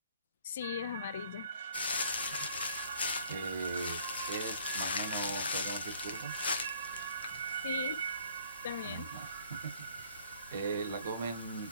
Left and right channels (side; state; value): both; inverted; correlation -0.57